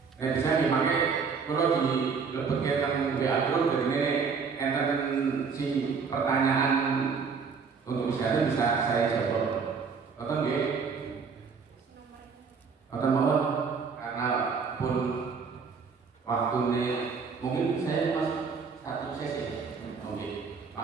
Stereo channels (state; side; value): quieter; left; 5.5 dB